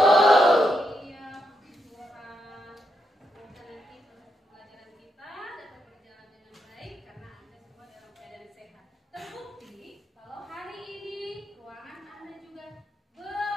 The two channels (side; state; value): both; normal; correlation 0.81